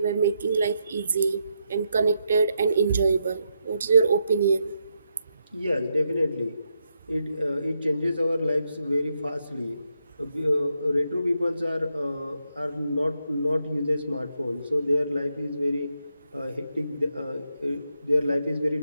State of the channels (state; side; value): inverted; both; correlation -0.81